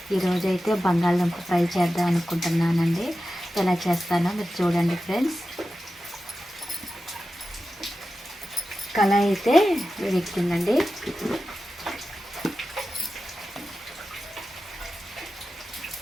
ఈరోజైతే బంగాళదుంప ఫ్రై చేద్దాం అనుకుంటున్నానండి. ఎలా చేస్తానో మీరు చూడండి ఫ్రెండ్స్. కళాయి అయితే వేడెక్కిందండి.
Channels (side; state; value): both; normal; correlation 0.93